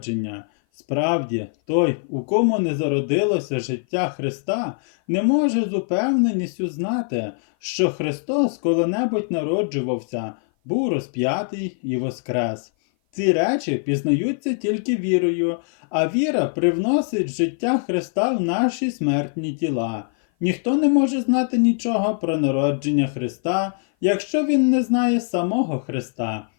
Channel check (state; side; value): silent; right; 56 dB below the other